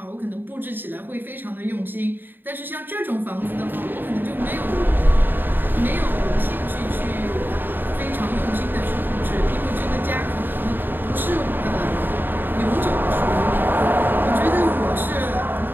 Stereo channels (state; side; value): late; left; 0.093 ms